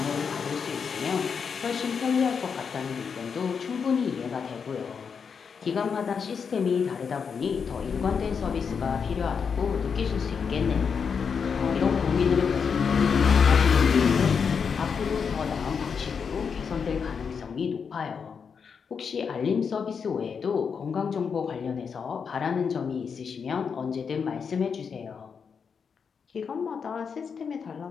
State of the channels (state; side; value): quieter; right; 6.2 dB